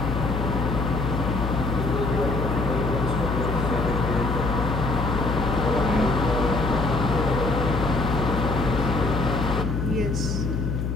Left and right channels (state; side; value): noise; left; hum, 1 dB below the sound